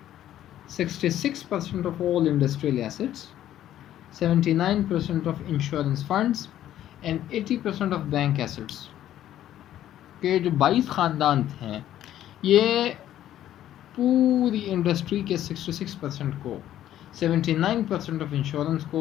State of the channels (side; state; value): right; quieter; 12.1 dB